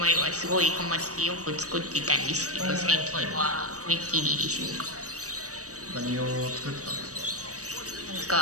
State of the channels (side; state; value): left; late; 0.66 ms